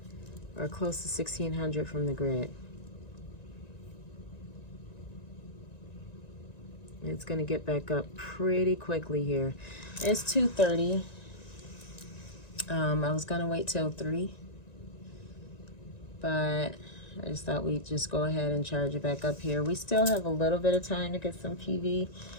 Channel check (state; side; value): late; right; 1.9 ms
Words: Or close to 1600 from the grid. It's going to get back up pretty quickly here. It's 2:30. I was going to wait till 3, but I just thought we'd just go ahead and charge it back up here. We still have a little bit of time to get some PV,